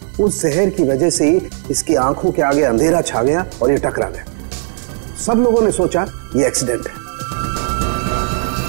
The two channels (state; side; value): silent; left; digital silence